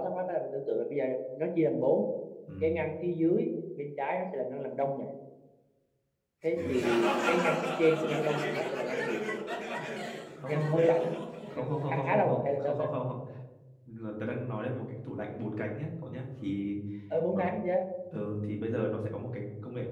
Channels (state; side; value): identical; both; correlation 1.00